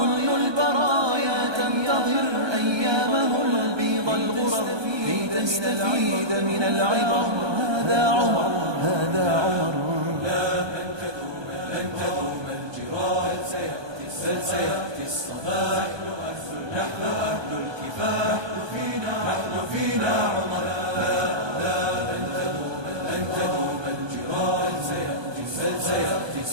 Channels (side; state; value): left; late; 1.2 ms